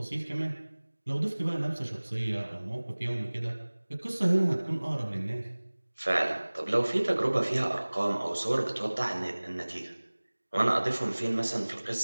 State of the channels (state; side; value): inverted; both; correlation -1.00